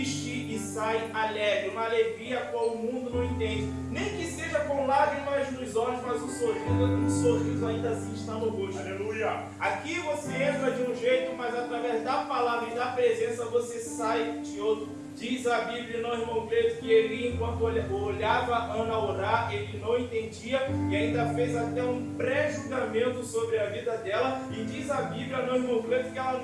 e sai alegre, uma alegria a qual o mundo não entende. Nem que seja com lágrimas nos olhos, mas um sorriso ainda assim está no rosto. Aleluia! Aqui você entra de um jeito, mas através da palavra e da presença você sai de outro. Diz a Bíblia, não, irmão Cleito, que ele, enquanto olhava a Ana orar, ele não entendia e ainda fez até um pré-julgamento sobre a vida dela. E diz a Bíblia, não, irmão Cleito, que ela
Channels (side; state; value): both; identical; correlation 1.00